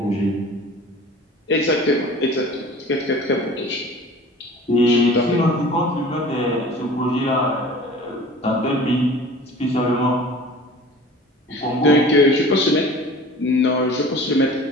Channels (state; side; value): normal; both; correlation 0.42